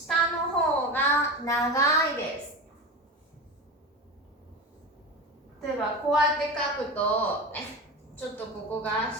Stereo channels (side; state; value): both; normal; correlation 0.26